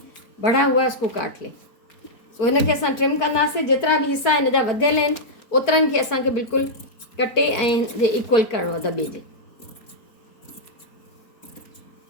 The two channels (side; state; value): right; late; 4.5 ms